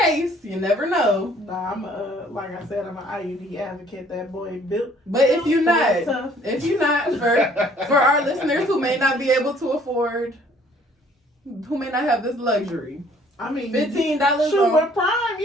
You never know. Nah, I'm like I said, I'm an IUD advocate. That boy built. But if you're not, tough. for our listeners who may not be able to afford, who may not have this luxury, I mean, $15 shoot, on with Prime,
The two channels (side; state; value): both; normal; correlation 0.59